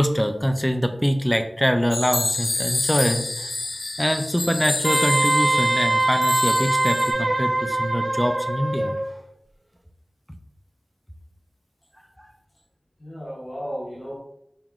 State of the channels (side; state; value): both; normal; correlation 0.98